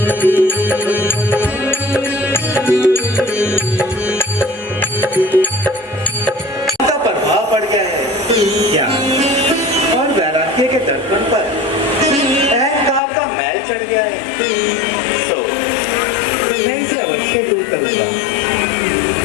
का प्रभाव पड़ गया है ज्ञान और वैराग्य के दर्पण पर अहंकार का मैल चढ़ गया है। सो मैं इसे अवश्य दूर करूंगा।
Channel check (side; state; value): right; drops out; at 13.0 s